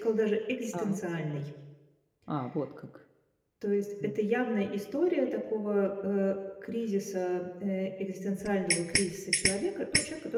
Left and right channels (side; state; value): both; identical; correlation 1.00